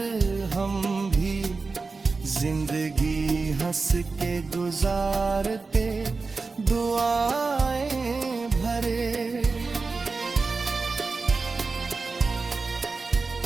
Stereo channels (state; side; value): quieter; left; 4.1 dB